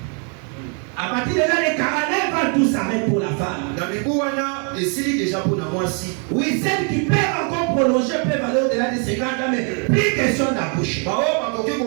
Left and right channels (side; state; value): left; quieter; 39.1 dB